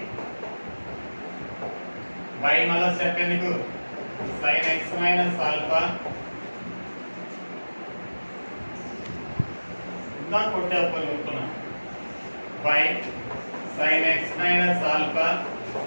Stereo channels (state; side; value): inverted; both; correlation -1.00